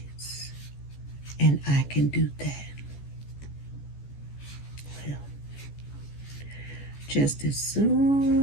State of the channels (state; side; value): late; right; 14 ms